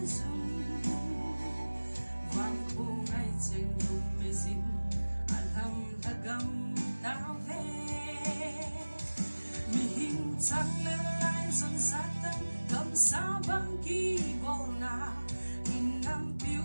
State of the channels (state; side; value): inverted; both; correlation -1.00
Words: dùng vang khô ngay trên vùng mê dinh alhamdulillah tao về mi hình trăng lên lại dần sát tâm cầm xa băng kỳ bầu na in năm phiêu